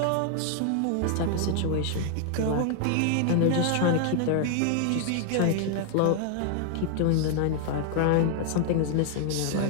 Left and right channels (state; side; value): different; both; correlation 0.00